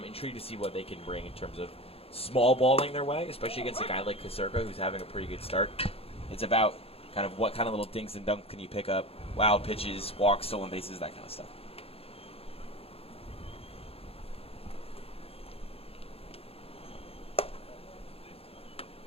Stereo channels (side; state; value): right; late; 0.28 ms